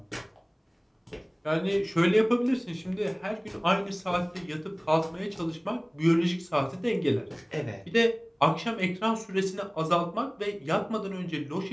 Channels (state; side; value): identical; both; correlation 1.00